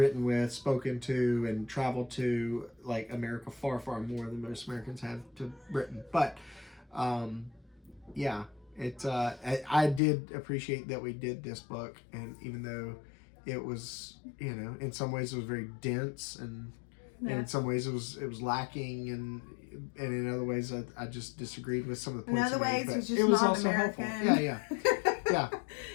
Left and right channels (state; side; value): drops out; right; at 10.0 s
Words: with, spoken to, and traveled to like America far, far more than most Americans have to Britain. But, yeah, it's I did appreciate that we did this book, and even though it was, you know, in some ways it was very dense, and in some ways it was lacking, and in other ways I just disagreed with some of the points. In other ways, made, it's just it was not also American. helpful. Yeah. Yeah.